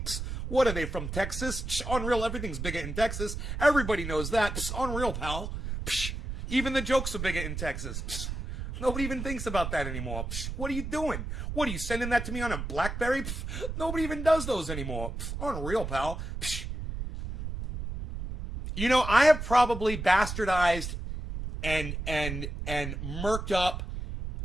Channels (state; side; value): noise; right; rumble, 5 dB below the sound